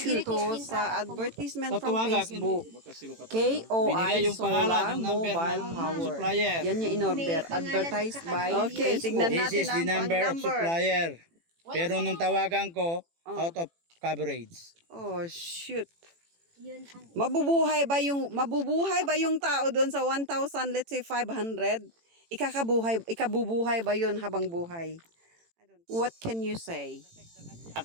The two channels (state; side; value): late; left; 18 ms